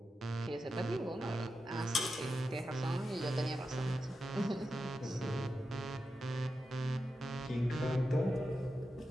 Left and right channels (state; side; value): normal; both; correlation 0.90